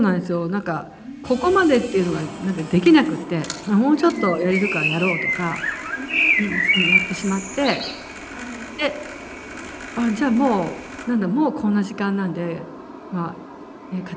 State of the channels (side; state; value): both; identical; correlation 1.00